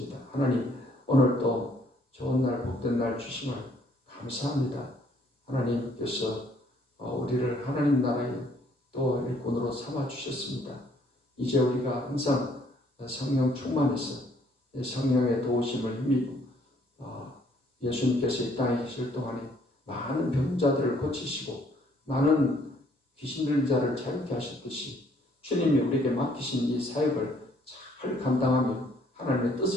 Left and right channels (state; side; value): normal; both; correlation 0.64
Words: 하나님, 오늘 또 좋은 날 복된 날 주심을 감사합니다. 하나님께서 우리를 하나님 나라의 또 일꾼으로 삼아 주셨습니다. 이제 우리가 항상 성령 충만해서 성령의 도우심을 힘입어 예수님께서 이 땅에 계실 동안에 많은 병자들을 고치시고 많은 귀신 들린 자를 자유케 하셨듯이 주님이 우리에게 맡기신 이 사역을 잘 감당하며 하나님의